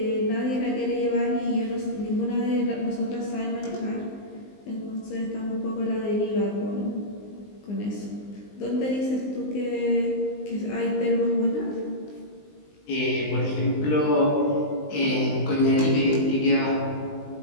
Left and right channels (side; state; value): right; late; 19 ms